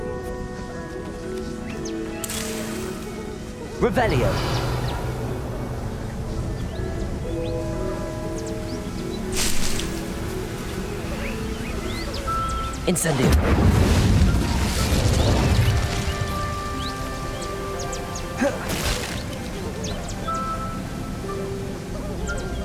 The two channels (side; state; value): both; identical; correlation 1.00